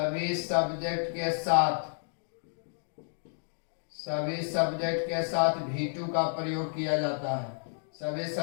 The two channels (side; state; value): right; silent; digital silence